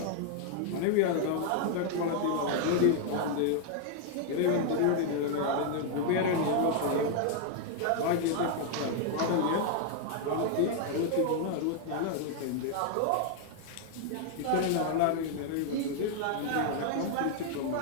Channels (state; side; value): different; both; correlation 0.00